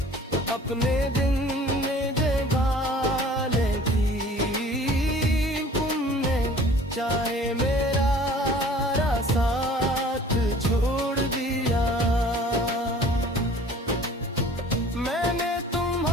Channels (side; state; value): both; normal; correlation 0.49